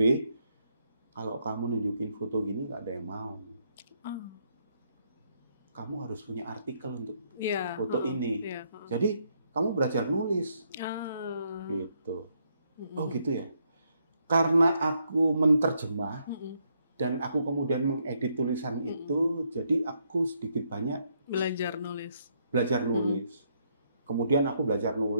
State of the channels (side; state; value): both; inverted; correlation -0.75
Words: kalau kamu nunjukin foto gini nggak ada yang mau. Kamu harus punya artikel untuk foto ini. Jadi kamu belajar nulis. Gitu. Oh gitu ya. Karena aku menterjemah, dan aku kemudian mengedit tulisan itu, jadi aku sedikit banyak belajar nulis. Kemudian aku belajar